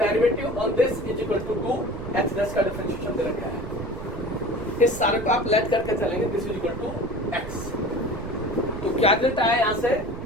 on this is equal to 2 h dash का डिफरेंशिएशन दे रखा है। इस सारे को आप लेट करके चलेंगे this is equal to x. तो क्या रिजल्ट आया यहां से,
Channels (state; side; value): noise; right; rumble, 10 dB below the sound